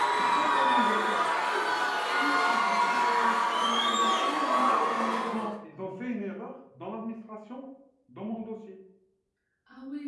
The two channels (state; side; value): identical; both; correlation 1.00